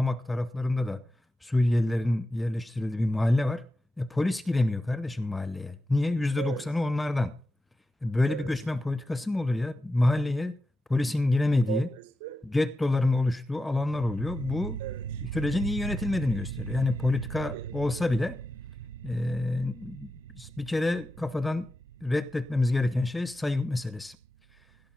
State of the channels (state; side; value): normal; both; correlation 0.91